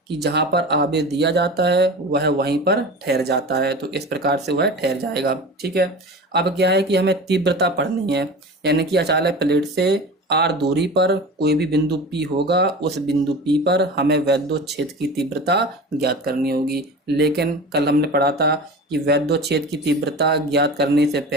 कि जहां पर आवेश दिया जाता है वह वहीं पर ठहर जाता है, तो इस प्रकार से वह ठहर जाएगा। ठीक है, अब क्या है कि हमें तीव्रता पढ़नी है, यानी कि अचालक प्लेट से r दूरी पर कोई भी बिंदु P होगा, उस बिंदु P पर हमें वैद्युत क्षेत्र की तीव्रता ज्ञात करनी होगी। लेकिन कल हमने पढ़ा था कि वैद्युत क्षेत्र की तीव्रता ज्ञात करने से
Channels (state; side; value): normal; both; correlation 0.33